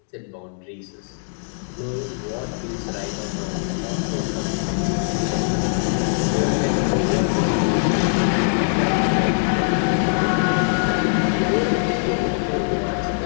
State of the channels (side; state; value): right; silent; digital silence